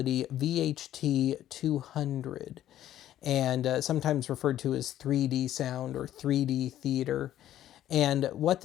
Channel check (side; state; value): right; quieter; 12.3 dB